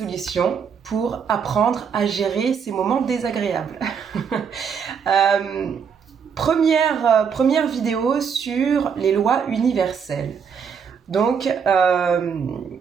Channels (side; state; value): left; quieter; 6.7 dB